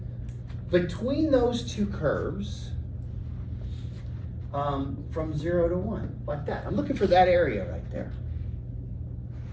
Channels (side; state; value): both; identical; correlation 1.00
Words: between those two curves from 0 to 1, like that. I'm looking for that area right there.